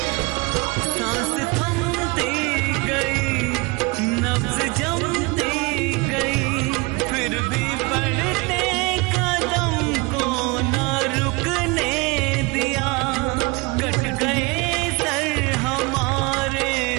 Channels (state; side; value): quieter; left; 26.8 dB